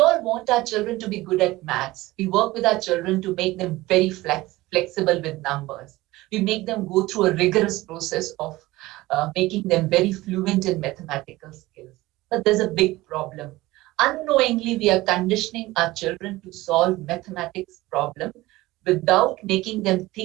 want our children to be good at maths. We work with our children to make them very flexible with numbers. We make them go through a rigorous process of making them very fluent in mathematical skills. But there's a big problem. Unknowingly, we are conditioning our children to solve mathematics problem without making them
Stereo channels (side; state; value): left; quieter; 18.8 dB